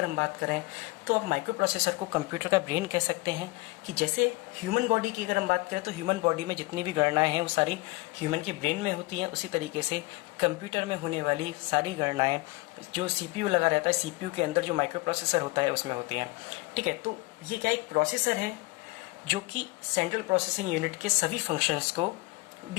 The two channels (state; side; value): quieter; right; 22.1 dB